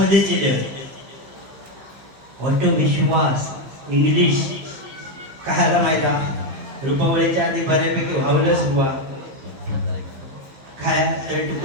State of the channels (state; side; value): late; left; 15 ms